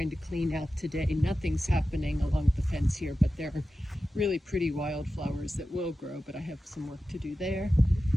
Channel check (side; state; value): both; normal; correlation 0.93